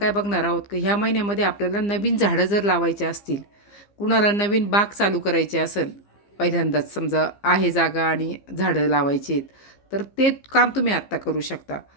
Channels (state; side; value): late; right; 15 ms